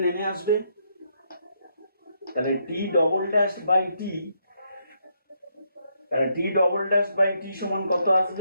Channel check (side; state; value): both; inverted; correlation -0.76